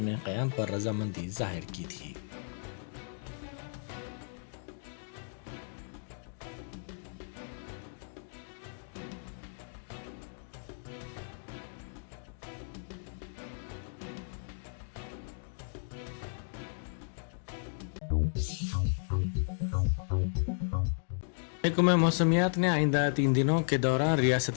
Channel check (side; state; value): right; silent; digital silence